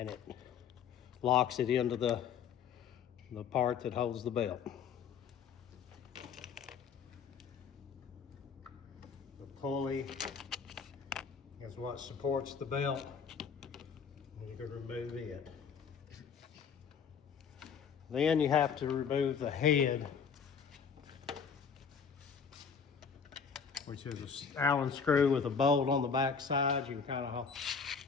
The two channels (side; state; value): right; quieter; 6.5 dB